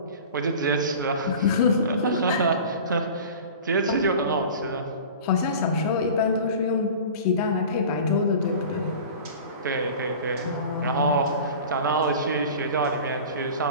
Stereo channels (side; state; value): both; inverted; correlation -0.38